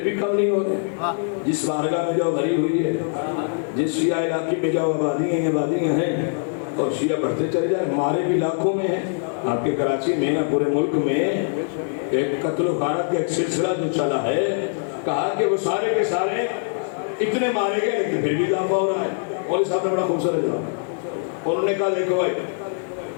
بھی کم نہیں ہوتے جس بارگاہ میں جاؤ بھری ہوئی ہے جس شیعہ علاقے میں جاؤ آبادیاں ہیں اور شیعہ بڑھتے چلے جائیں مارے بھی لاکھوں میں ہیں آپ کے کراچی میں پورے ملک میں ایک قتل و غارت کا ایک سلسلہ جو چلا ہے کہا کہ وہ سارے کے سارے اتنے مارے گئے لیکن پھر بھی دافع ہو رہا ہے مولوی صاحب نے بڑا خوبصورت جواب انہوں نے کہا دیکھو بھائی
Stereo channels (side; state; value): right; silent; 62 dB below the other